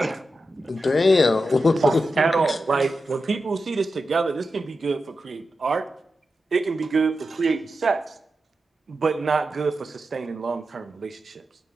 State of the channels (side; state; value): both; normal; correlation 0.90